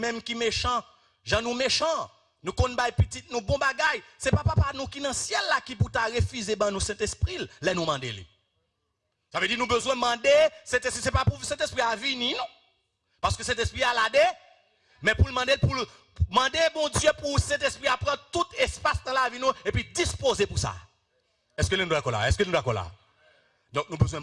qui méchants, gens nous méchants, nous connaissons petit, nous bon bagaille, c'est pas papa nous qui dans le ciel là qui pour refuser ben nous Saint-Esprit, là nous demander. Ça veut dire nous besoin de demander, c'est pas pour cet esprit à venir, non? Parce que cet esprit a l'adé, mais pour demander bon Dieu pour cet esprit à prendre tout espace dans la vie nous et puis disposer pour ça. Est-ce que nous d'accord là? Est-ce que nous d'accord là? Donc nous besoin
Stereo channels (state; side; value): identical; both; correlation 1.00